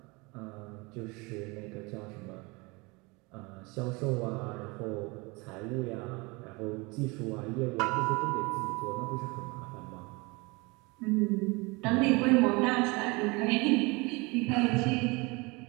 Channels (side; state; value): left; quieter; 26.4 dB